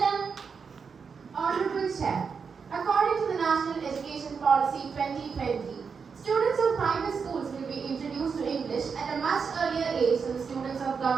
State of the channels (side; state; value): left; quieter; 5.8 dB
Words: Honorable Chair, according to the National Education Policy 2020, students of private schools will be introduced to English at a much earlier age than the students of